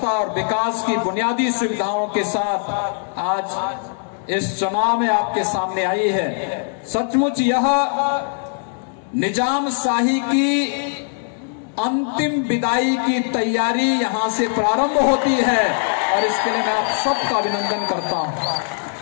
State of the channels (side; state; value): right; silent; 64 dB below the other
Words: और विकास की बुनियादी सुविधाओं के साथ आज इस चुनाव में आपके सामने आई है। सचमुच यह निजाम शाही की अंतिम विदाई की तैयारी यहां से प्रारंभ होती है और इसके लिए मैं आप सबका अभिनंदन करता हूं।